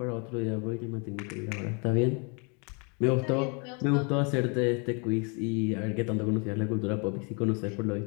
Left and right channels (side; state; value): right; quieter; 34.6 dB